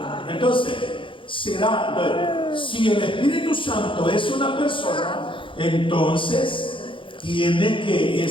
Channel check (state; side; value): late; right; 0.25 ms